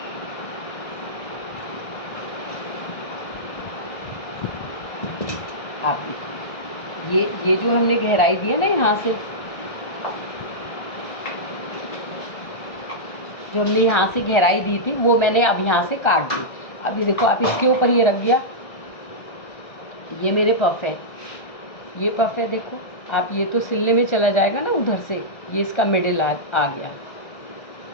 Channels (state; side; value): late; right; 1.3 ms